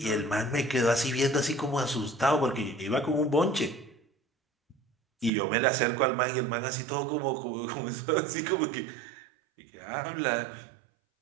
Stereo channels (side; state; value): left; drops out; at 5.3 s